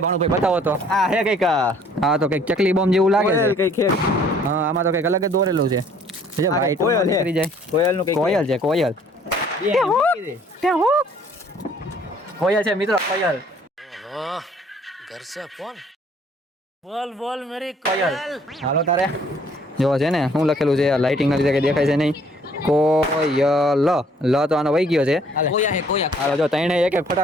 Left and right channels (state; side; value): normal; both; correlation 0.59